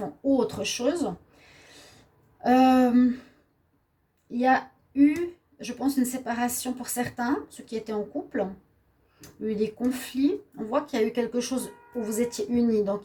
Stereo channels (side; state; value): both; identical; correlation 1.00